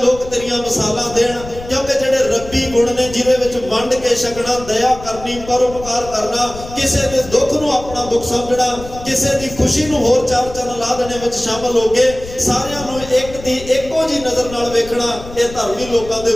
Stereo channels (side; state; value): left; noise; rumble, 14 dB below the sound